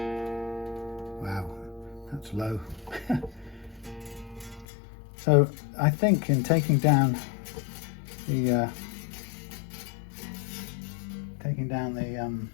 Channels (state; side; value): drops out; right; at 4.7 s